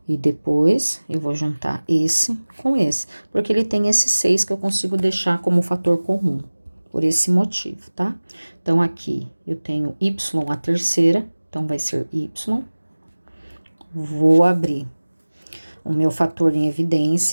E depois, eu vou juntar esse com esse, porque ele tem esse 6 que eu consigo deixar como fator comum, por esse motivo, tá? Então, aqui eu tenho y a terceira, então vai ser y. Vou abrir o meu fator em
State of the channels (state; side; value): inverted; both; correlation -1.00